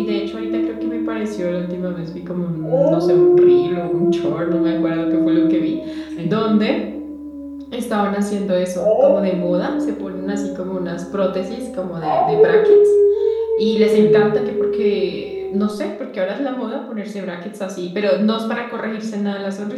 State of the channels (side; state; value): both; identical; correlation 1.00